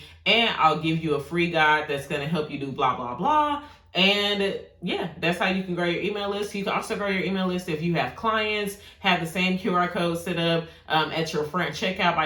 and I'll give you a free guide that's going to help you do blah, blah, blah. And yeah, that's how you can grow your email list. You can also grow your email list if you have clients, have the same QR code set up at your front checkout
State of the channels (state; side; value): identical; both; correlation 1.00